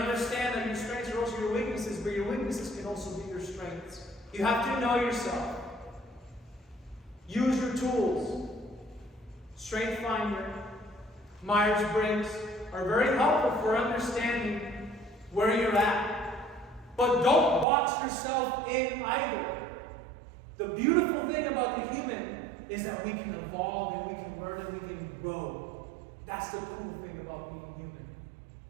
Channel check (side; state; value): left; drops out; at 17.7 s